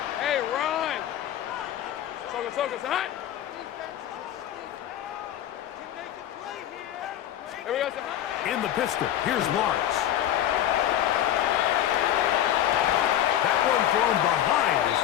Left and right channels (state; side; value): quieter; right; 11.5 dB